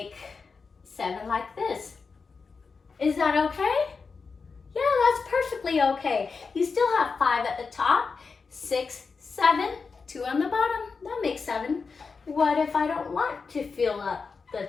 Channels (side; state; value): right; quieter; 4.9 dB